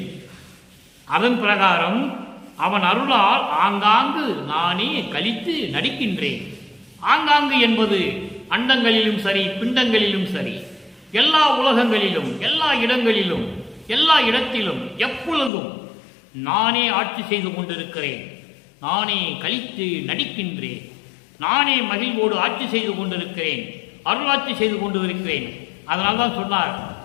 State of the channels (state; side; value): drops out; right; at 15.5 s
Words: அதன் பிரகாரம் அவன் அருளால் ஆங்காங்கு நானே கலித்து நடிக்கின்றேன். ஆங்காங்கு என்பது அண்டங்களிலும் சரி, பிண்டங்களிலும் சரி, எல்லா உலகங்களிலும், எல்லா இடங்களிலும், எல்லா இடத்திலும், எப்பொழுதும் நானே ஆட்சி செய்து கொண்டிருக்கிறேன். நானே கலித்து நடிக்கின்றேன். நானே மகிழ்வோடு ஆட்சி செய்து கொண்டிருக்கிறேன், அருளாட்சி செய்து கொண்டு இருக்கிறேன். அதனால்தான் சொன்னார்,